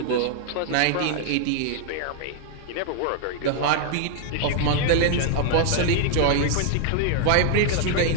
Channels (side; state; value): both; different; correlation 0.00